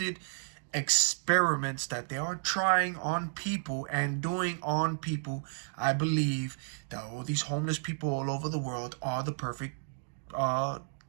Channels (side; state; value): left; silent; digital silence